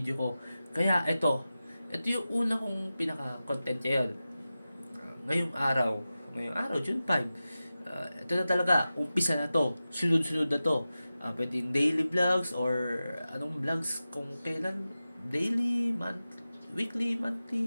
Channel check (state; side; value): inverted; both; correlation -0.94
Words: ko. Kaya ito yung una kong pinaka-content ngayon. Ngayong araw, June 5. Ito na talaga, umpisa na to. Sunod-sunod na to. Pwedeng daily vlogs or anong vlogs kung kailan. Daily, weekly,